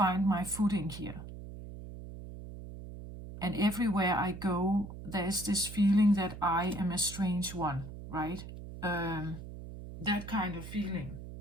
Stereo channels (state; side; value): noise; right; hum, 12 dB below the sound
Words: my footing here. And everywhere I go, there's this feeling that I am a strange one, right? That kind of feeling.